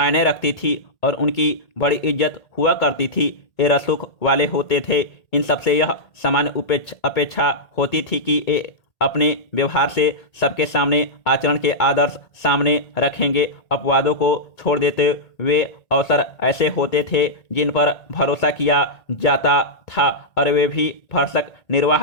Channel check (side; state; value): right; late; 1.8 ms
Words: रखती थी और उनकी बड़ी इज्जत हुआ करती थी। ये रसूख वाले होते थे। इन सबसे यह सामान्य अपेक्षा होती थी कि ये अपने व्यवहार से सबके सामने आचरण के आदर्श सामने रखेंगे। अपवादों को छोड़ देते वे अवसर ऐसे होते थे जिन पर भरोसा किया जाता था और वे भी भरसक